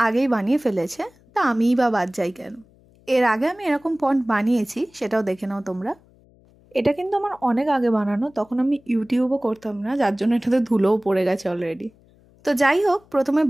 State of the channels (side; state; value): left; noise; hum, 30 dB below the sound